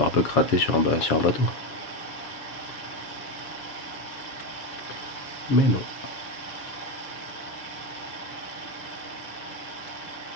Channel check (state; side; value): late; right; 7.2 ms